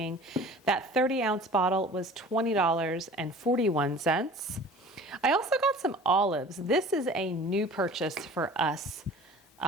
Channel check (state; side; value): normal; both; correlation 0.44